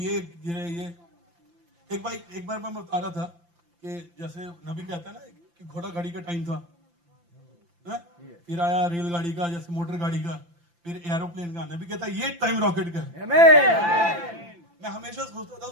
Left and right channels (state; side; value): late; left; 5.8 ms